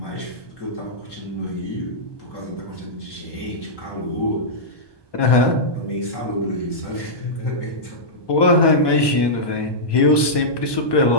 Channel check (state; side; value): late; right; 1.2 ms